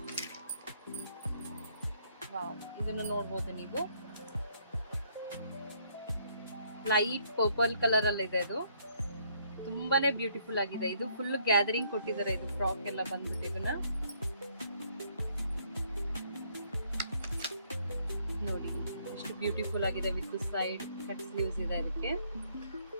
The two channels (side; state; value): both; inverted; correlation -0.68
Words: ವಾವ್, ಇದನ್ನು ನೋಡ್ಬೋದು ನೀವು, ಲೈಟ್ ಪರ್ಪಲ್ ಕಲರ್ ಅಲ್ಲಿ ಇದೆ. ಇದು ತುಂಬಾನೇ ಬ್ಯೂಟಿಫುಲ್ ಆಗಿದೆ. ಇದು ಫುಲ್ ಗ್ಯಾದರಿಂಗ್ ಕೊಟ್ಟಿದ್ದಾರೆ. ಇದು ಫ್ರಾಕ್ ಎಲ್ಲ ಬಂದ್ಬಿಟ್ಟು ಇದನ್ನ ನೋಡಿ ಎಷ್ಟು ಬ್ಯೂಟಿಫುಲ್ ಆಗಿದೆ. ವಿತ್ ಸೈಡ್ ಕಟ್ ಸ್ಲೀವ್ಸ್ ಇದೆ ಅದಕ್ಕೆ.